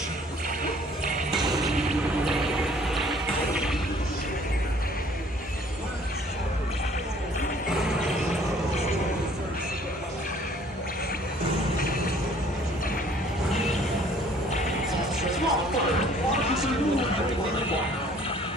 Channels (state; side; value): normal; both; correlation 0.56